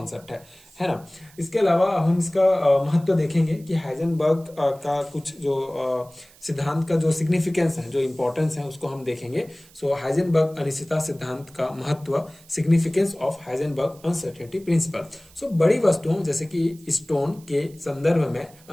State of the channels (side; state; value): right; noise; hiss, 26 dB below the sound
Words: है ना। इसके अलावा हम इसका महत्व देखेंगे कि हाइजेनबर्ग का कुछ जो सिद्धांत का जो सिग्निफिकेंस है, जो इंपॉर्टेंस है, उसको हम देखेंगे। सो हाइजेनबर्ग अनिश्चितता सिद्धांत का महत्व, significance of Heisenberg uncertainty principle. So बड़ी वस्तुओं जैसे कि स्टोन के संदर्भ में